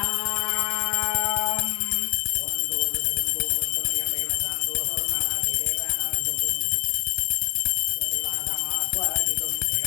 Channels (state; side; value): silent; right; digital silence